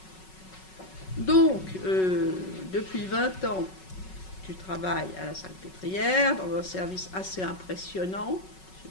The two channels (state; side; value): late; right; 5.4 ms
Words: Donc, depuis 20 ans, tu travailles à la Salpêtrière, dans un service assez impressionnant. Ceux